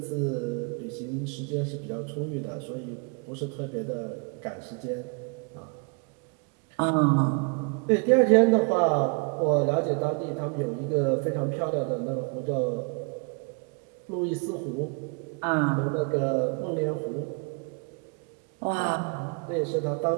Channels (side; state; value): left; quieter; 34.7 dB